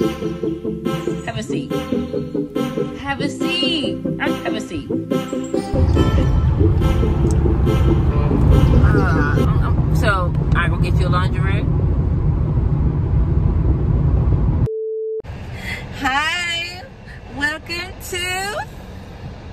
a seat. Have a seat. Have a seat. So, I go get you a laundry room. Hi. Welcome to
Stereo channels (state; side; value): identical; both; correlation 1.00